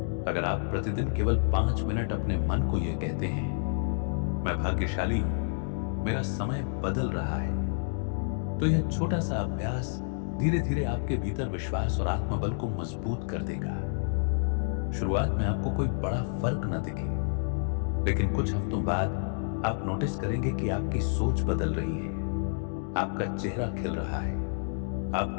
अगर आप प्रतिदिन केवल 5 मिनट अपने मन को यह कहते हैं मैं भाग्यशाली हूं, मेरा समय बदल रहा है, तो यह छोटा सा अभ्यास धीरे धीरे आपके भीतर विश्वास और आत्मबल को मजबूत कर देगा। शुरुआत में आपको कोई बड़ा फर्क न दिखे, लेकिन कुछ हफ्तों बाद आप नोटिस करेंगे कि आपकी सोच बदल रही है, आपका चेहरा खिल रहा है,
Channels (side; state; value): right; silent; digital silence